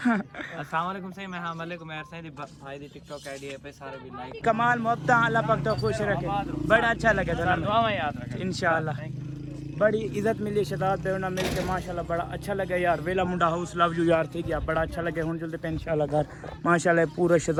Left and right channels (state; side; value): identical; both; correlation 1.00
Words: अस्सलाम वालेकुम सही मैं हां वालेकुम यार सही भाई दी टिकटॉक आईडी है पे सारे भी लाइक कमाल मोहब्बत अल्लाह पाक तो खुश रखे बड़ा अच्छा लगे तो दुआ में याद रखें इंशाल्लाह बड़ी इज्जत मिली शहजाद बेवना मिल के माशाल्लाह बड़ा अच्छा लगे यार वेला मुंडा हाउस लव यू यार ठीक है बड़ा अच्छा लगे हुन जल्दी पे इंशाल्लाह घर माशाल्लाह पूरा